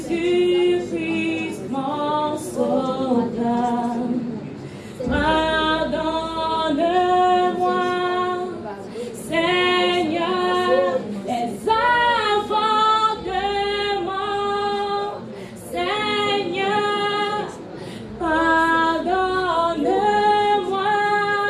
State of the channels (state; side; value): identical; both; correlation 1.00